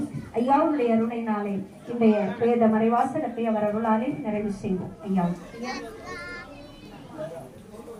ஐயாவுடைய அருணையினாலே இன்றைய வேத மறைவாசகத்தை அவர் அருளாலே நிறைவு செய்வோம். ஐயா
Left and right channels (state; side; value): identical; both; correlation 1.00